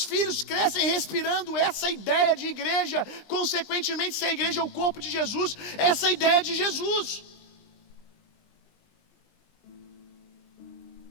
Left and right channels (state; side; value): late; right; 20 ms